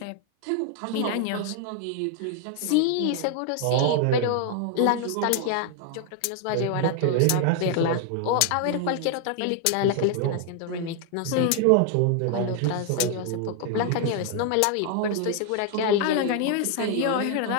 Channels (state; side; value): different; both; correlation 0.00